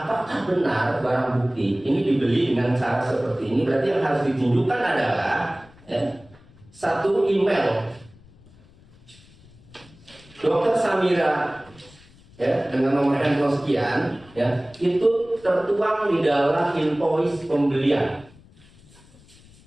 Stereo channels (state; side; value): noise; left; rumble, 25 dB below the sound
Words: benar barang bukti ini dibeli dengan cara seperti ini. Berarti yang harus ditunjukkan adalah satu email Dokter Samira dengan nomor handphone sekian itu tertuang di dalam invoice pembelian.